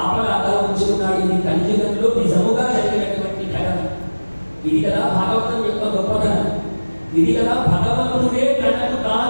ఉంచుకున్నాడు. ఇది కలియుగంలో నిజముగా జరిగినటువంటి ఘటన. ఇది కదా భాగవతం యొక్క గొప్పతనం. ఇది కదా భగవంతుడే తనకు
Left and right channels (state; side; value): inverted; both; correlation -1.00